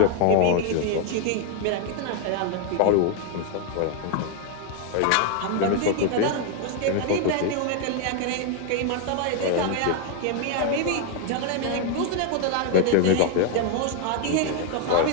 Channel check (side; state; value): both; different; correlation 0.01